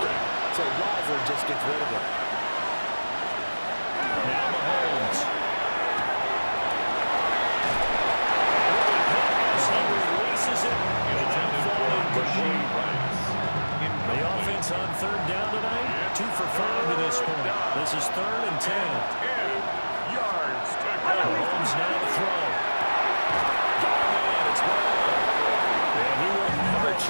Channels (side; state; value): both; inverted; correlation -1.00